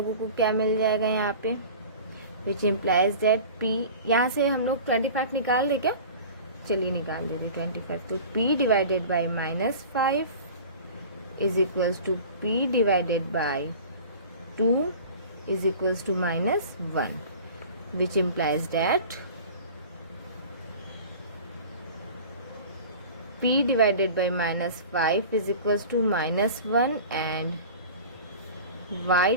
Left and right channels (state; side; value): inverted; both; correlation -0.40